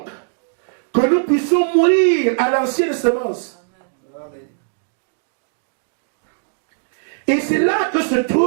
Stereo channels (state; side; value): silent; left; digital silence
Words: que nous puissions mourir à l'ancienne semence. Amen. Et c'est là que se